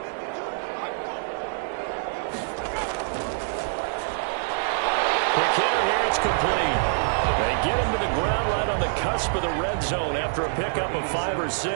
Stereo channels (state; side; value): silent; left; digital silence